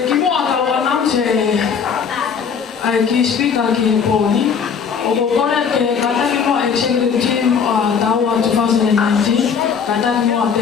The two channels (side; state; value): right; quieter; 6.6 dB